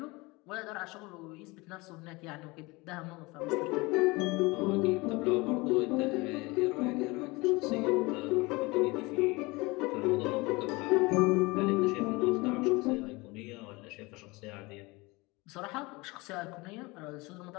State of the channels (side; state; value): right; quieter; 24.0 dB